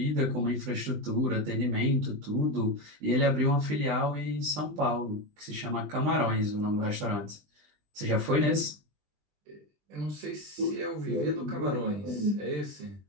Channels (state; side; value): late; left; 20 ms